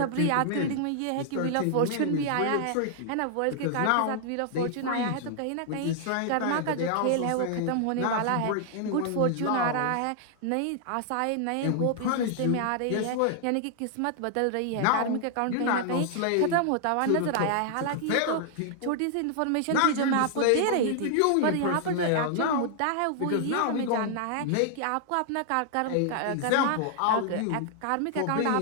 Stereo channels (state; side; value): different; both; correlation -0.01